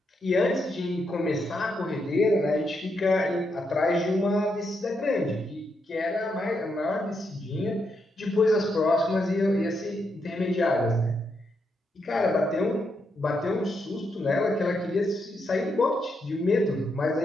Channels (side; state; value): both; normal; correlation 0.81